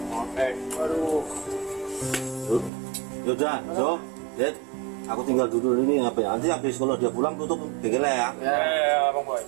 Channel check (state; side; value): drops out; left; at 2.7 s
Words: Oke. Waduh. Yaudah, so, Dad, aku tinggal dulu ini apa ya? Nanti habis kalau dia pulang tutup bengkelnya ya. Ya Bang Boy.